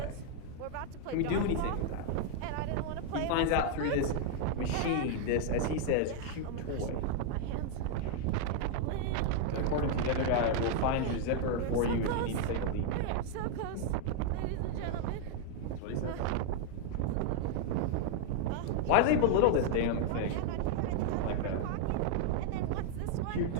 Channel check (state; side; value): different; both; correlation 0.00